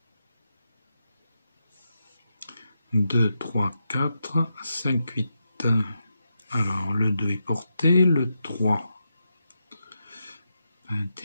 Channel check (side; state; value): both; inverted; correlation -0.86